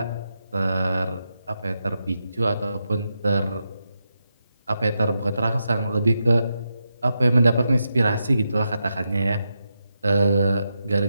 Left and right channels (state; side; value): inverted; both; correlation -0.86